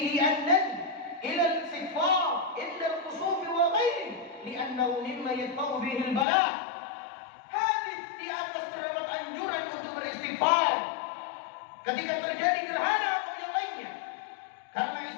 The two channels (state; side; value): drops out; right; at 6.2 s